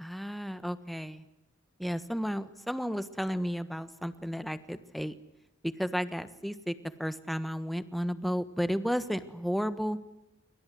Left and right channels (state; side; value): normal; both; correlation 0.98